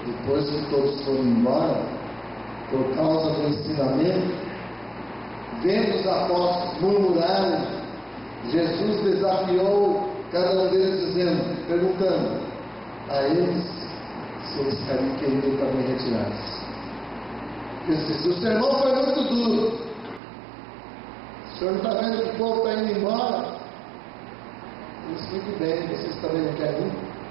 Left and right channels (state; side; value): drops out; left; at 20.2 s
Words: Depois que todos foram embora, por causa do ensinamento, vendo os apóstolos murmurarem, Jesus desafiou cada um deles, perguntando a eles se eles queriam também retirar-se. Ele disse: o sermão foi muito duro. O senhor não está vendo que o povo está indo embora? Ele disse: muito bem, vocês também não querem ir?